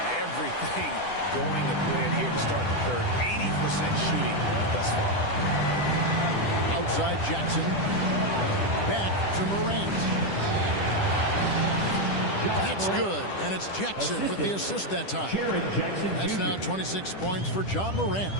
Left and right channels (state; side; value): late; right; 10 ms